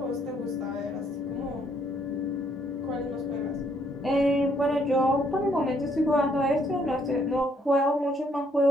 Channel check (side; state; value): both; normal; correlation 0.69